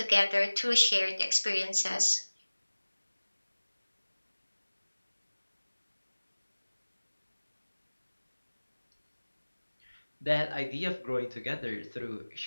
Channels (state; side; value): inverted; both; correlation -1.00